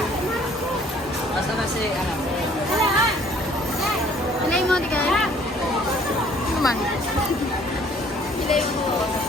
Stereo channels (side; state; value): both; normal; correlation 0.58